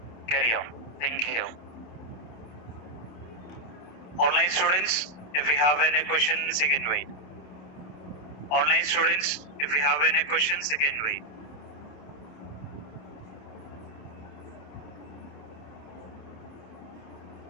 Carry on. Thank you. Online students, if we have any questions, you can wait. Online students, if we have any questions, you can wait.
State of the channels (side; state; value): right; late; 27 ms